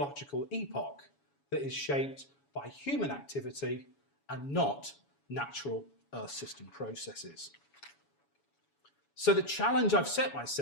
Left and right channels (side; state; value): right; late; 7.1 ms